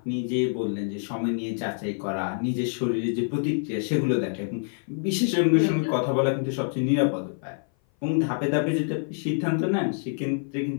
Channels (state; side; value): silent; right; 56 dB below the other